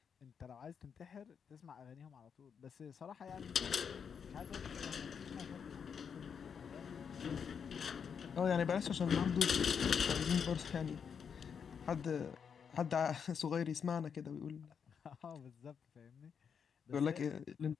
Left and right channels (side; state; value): right; quieter; 6.9 dB